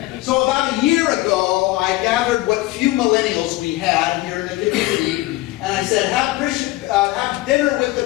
So about a year ago, I gathered what few millennials we had here in the community, and I said, have dinner with the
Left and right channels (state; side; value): quieter; right; 18.7 dB